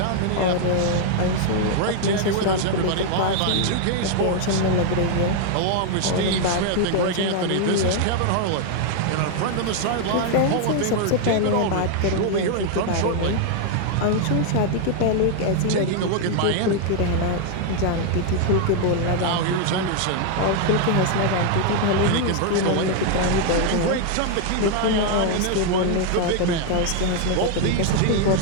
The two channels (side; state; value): both; different; correlation 0.00